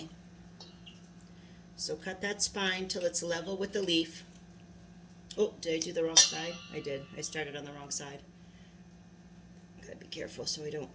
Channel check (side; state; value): both; identical; correlation 1.00